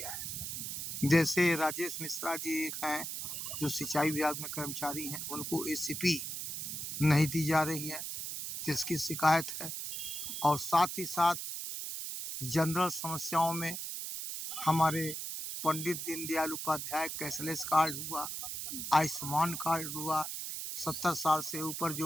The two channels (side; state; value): right; noise; hiss, 5 dB below the sound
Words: है। जैसे राजेश मिश्रा जी एक हैं जो सिंचाई विभाग में कर्मचारी हैं, उनको एसीपी नहीं दी जा रही है, जिसकी शिकायत है। और साथ ही साथ जनरल समस्याओं में हमारे पंडित दीनदयाल उपाध्याय कैशलेस कार्ड हुआ, आयुष्मान कार्ड हुआ, 70 साल से ऊपर